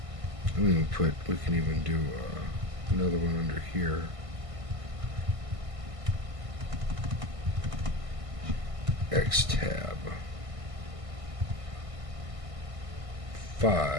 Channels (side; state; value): left; late; 1.5 ms